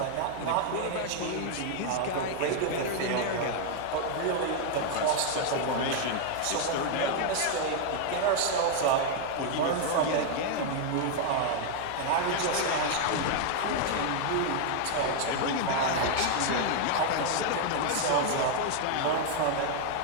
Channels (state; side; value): different; both; correlation 0.00